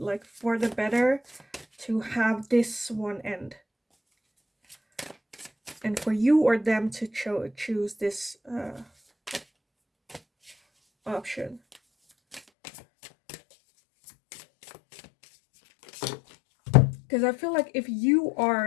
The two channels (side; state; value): right; drops out; at 12.4 s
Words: for the better to have this one end, and for you or them to choose this option. Because I feel like if you